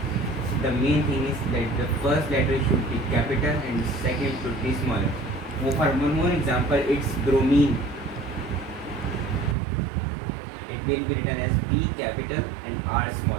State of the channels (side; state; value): left; drops out; at 9.6 s